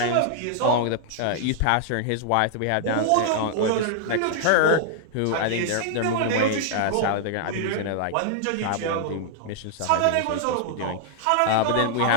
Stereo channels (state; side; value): different; both; correlation 0.00